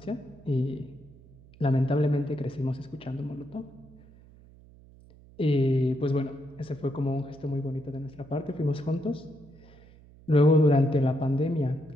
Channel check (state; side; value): noise; right; hum, 24 dB below the sound